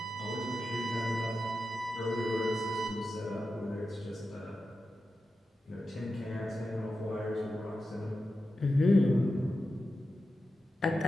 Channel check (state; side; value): normal; both; correlation 0.91